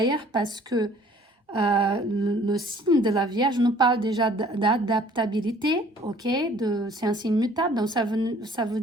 parce que le signe de la Vierge nous parle déjà d'adaptabilité, ok? C'est un signe mutable, donc ça veut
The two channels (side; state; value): both; normal; correlation 0.55